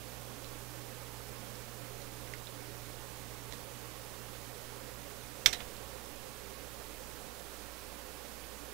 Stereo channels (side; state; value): left; quieter; 17.0 dB